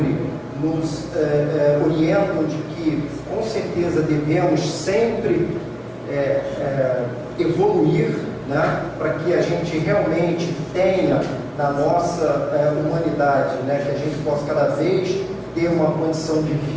nos orientam de que, com certeza, devemos sempre evoluir, né? Para que a gente realmente tenha na nossa humanidade, né? Que a gente possa cada vez ter uma condição de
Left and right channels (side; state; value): both; identical; correlation 1.00